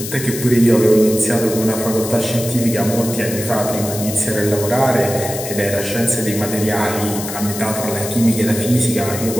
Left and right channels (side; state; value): left; noise; hiss, 8 dB below the sound